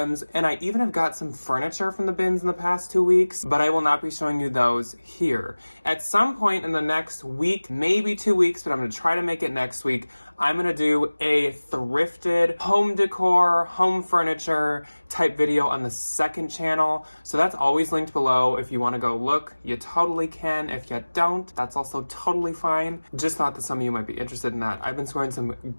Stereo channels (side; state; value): both; inverted; correlation -1.00